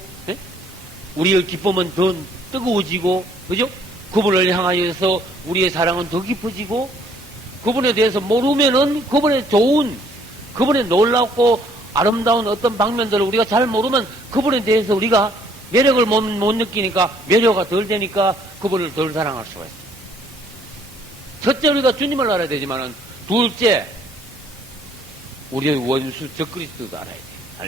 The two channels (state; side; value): normal; both; correlation 0.63